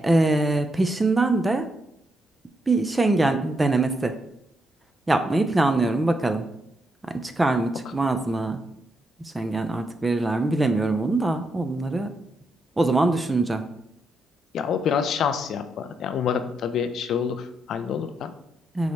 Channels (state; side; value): normal; both; correlation 0.80